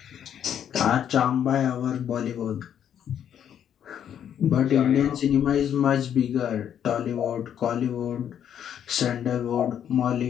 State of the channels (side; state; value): right; quieter; 9.3 dB